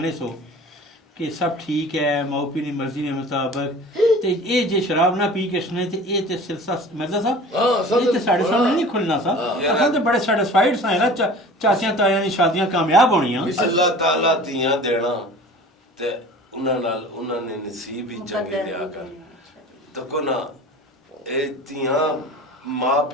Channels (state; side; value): normal; both; correlation 0.41